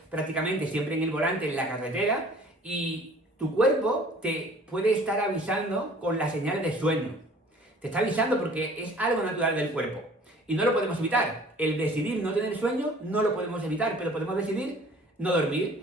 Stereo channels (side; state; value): both; normal; correlation 0.51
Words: prácticamente siempre en el volante, en la carretera, y tu cuerpo te puede estar avisando con la señal de sueño. Te está avisando porque es algo natural del cuerpo. Y no lo podemos evitar. El decidir no tener sueño no lo podemos evitar, pero podemos decidir no